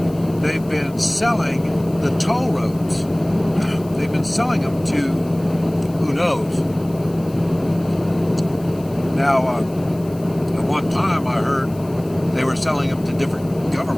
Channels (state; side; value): noise; left; hiss, 24 dB below the sound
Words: They've been selling the toll roads. They've been selling them to who knows. Now, at one time I heard they were selling them to different